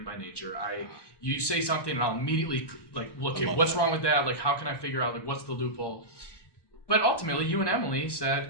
by nature. You say something, and I'll immediately look at what's wrong with that. Like, how can I figure out what's the loophole? But ultimately, you and Emily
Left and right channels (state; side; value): late; right; 1.1 ms